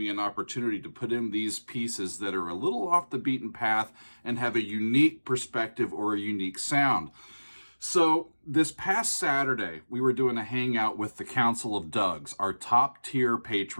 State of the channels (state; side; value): inverted; both; correlation -1.00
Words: an opportunity to put in these pieces that are a little off the beaten path and have a unique perspective or a unique sound. So this past Saturday, we were doing a hangout with the Council of Dougs, our top tier